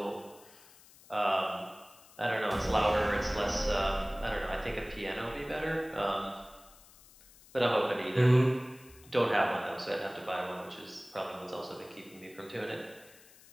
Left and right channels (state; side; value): noise; left; hiss, 24 dB below the sound